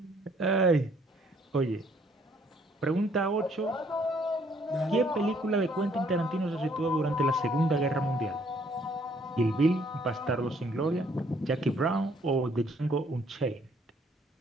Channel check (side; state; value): both; normal; correlation 0.65